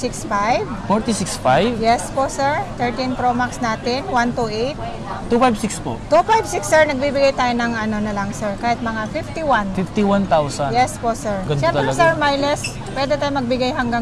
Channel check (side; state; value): both; identical; correlation 1.00